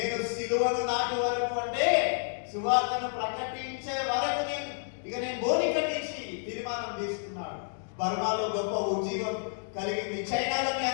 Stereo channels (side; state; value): right; silent; digital silence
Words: సిలువను నాటు వరకు అంటే సువార్తను ప్రకటించే వరకు నేను బోని కట్టించి తీర్మానం తీసుకున్నాడు. బర్మాలో గొప్ప ఉజ్జీవం కలిగింది. చైనాలో మీ